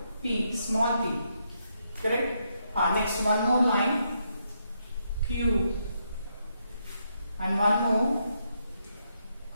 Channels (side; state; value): both; inverted; correlation -0.79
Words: P, small p. Correct? Next one more line, Q, and one more